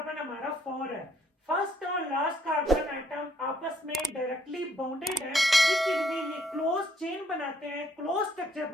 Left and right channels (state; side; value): normal; both; correlation 0.67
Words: हमारा 4 है। फर्स्ट और लास्ट कार्बन एटम आपस में डायरेक्टली बॉन्डेड है, इसलिए ये क्लोज चेन बनाते हैं, क्लोज स्ट्रक्चर